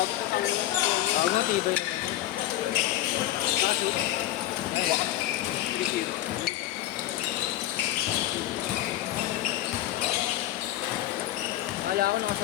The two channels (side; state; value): right; quieter; 14.3 dB